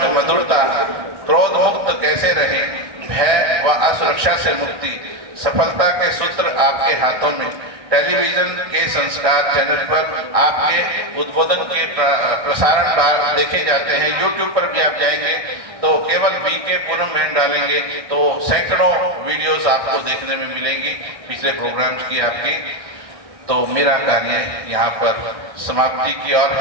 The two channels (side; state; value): left; late; 1.6 ms